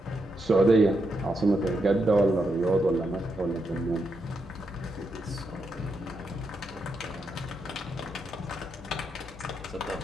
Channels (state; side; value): normal; both; correlation 0.82